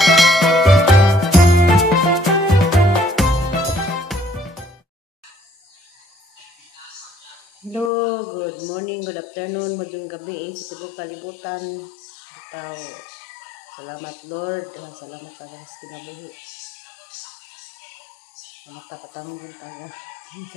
Hello, good morning, good afternoon, magandang gabi sa tibok kalibutan. Ikaw, salamat Lord, salamat talaga sa kinabuhi. Salamat tapatang din tayo.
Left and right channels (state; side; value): drops out; right; at 7.9 s